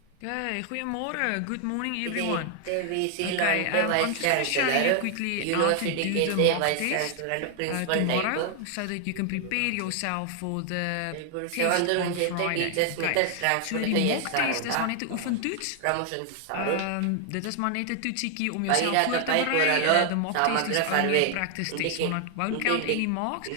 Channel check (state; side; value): different; both; correlation 0.00